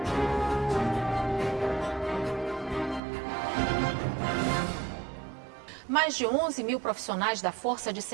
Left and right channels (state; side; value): drops out; left; at 3.0 s